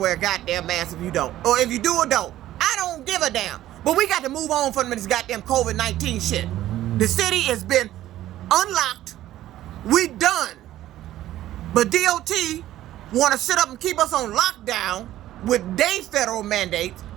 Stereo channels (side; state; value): left; quieter; 13.9 dB